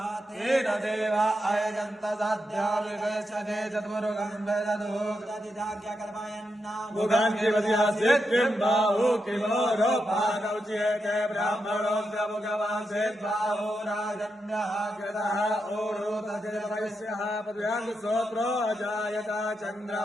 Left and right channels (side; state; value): both; normal; correlation 0.85